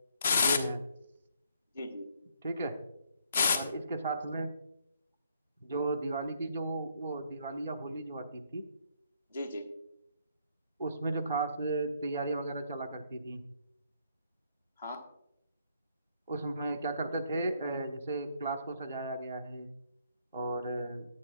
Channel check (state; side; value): inverted; both; correlation -0.68